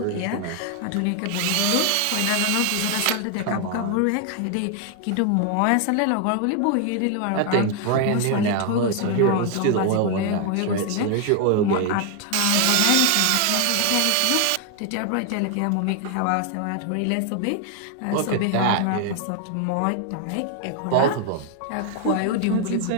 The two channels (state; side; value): different; both; correlation 0.00